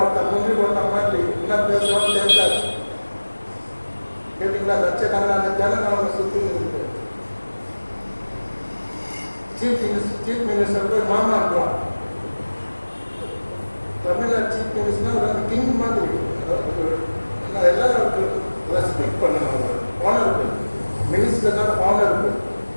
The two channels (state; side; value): inverted; both; correlation -1.00